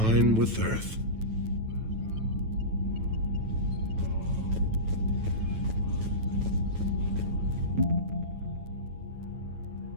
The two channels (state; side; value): late; left; 9.1 ms